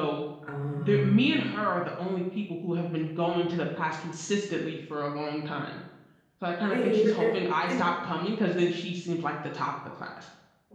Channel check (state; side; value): identical; both; correlation 1.00